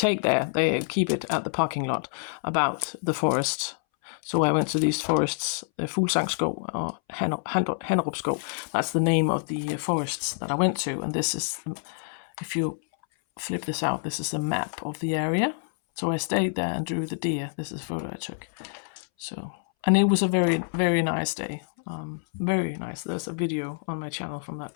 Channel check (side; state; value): right; silent; 60 dB below the other